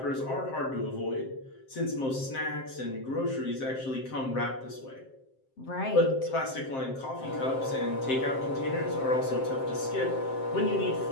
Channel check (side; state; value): right; late; 7.6 ms